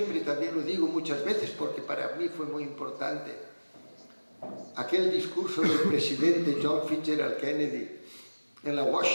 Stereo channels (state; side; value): inverted; both; correlation -1.00